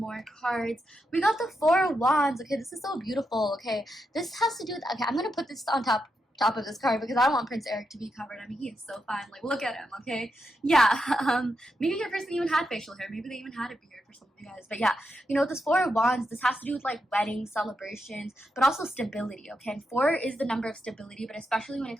cards. We got the Four of Wands. Okay, this is so beautiful. Okay, this has to do with, okay, I'm going to put this on top of this card because I don't want Prince Eric to be covered. I mean, he is so fine. Like, look at him, okay? Yeah, maybe your person even had facial hair. Maybe they even had a beard for some of you guys. But yeah, you know, this Four of Wands, this has to do with like weddings, celebrations, but also stability, okay? And 4 is the number of stability, but especially when it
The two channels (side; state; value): both; normal; correlation 0.84